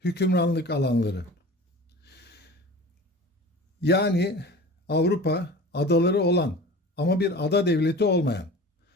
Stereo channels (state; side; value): normal; both; correlation 0.38